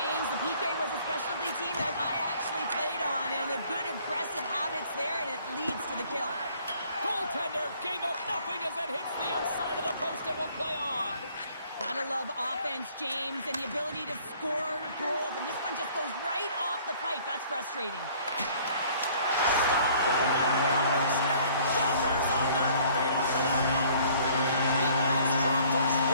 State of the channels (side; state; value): both; inverted; correlation -0.57